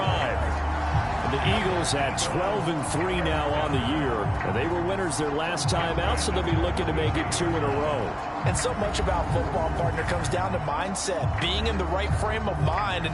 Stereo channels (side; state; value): both; identical; correlation 1.00